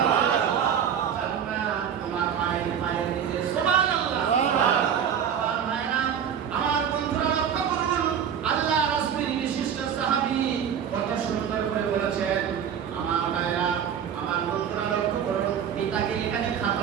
জান্নাত তোমার মায়ের পায়ের নিচে। সুবহানাল্লাহ। সুবহানাল্লাহ। আমার বন্ধুরা লক্ষ্য করুন, আল্লাহ রাসূলের বিশিষ্ট সাহাবী কত সুন্দর করে বলেছেন। আমার ভাইরা, আমার বন্ধুরা লক্ষ্য করুন, পিতাকে এখানে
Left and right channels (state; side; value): quieter; left; 8.3 dB